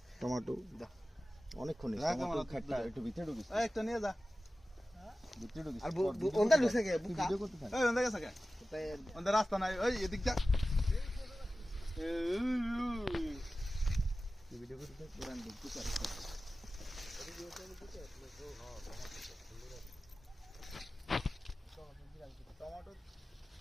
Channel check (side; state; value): both; normal; correlation 0.95